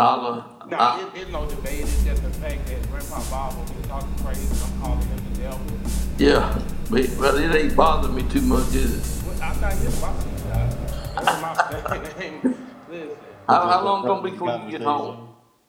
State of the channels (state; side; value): identical; both; correlation 1.00